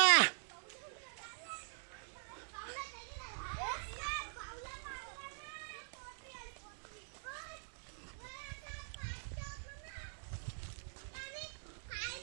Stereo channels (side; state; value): left; silent; digital silence